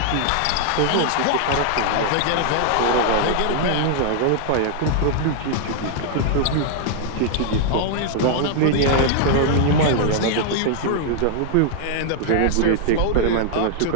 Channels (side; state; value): both; different; correlation -0.01